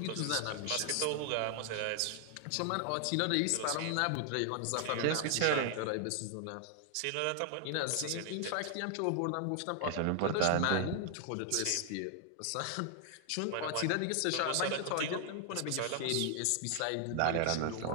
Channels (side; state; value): both; different; correlation 0.00